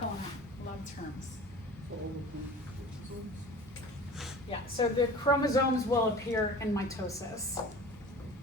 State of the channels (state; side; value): normal; both; correlation 0.40